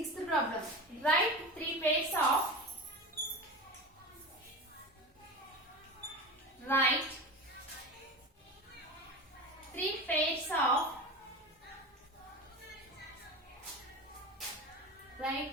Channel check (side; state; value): both; normal; correlation 0.29